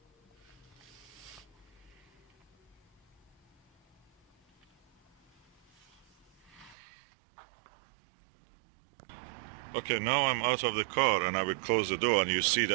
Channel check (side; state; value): left; drops out; at 6.8 s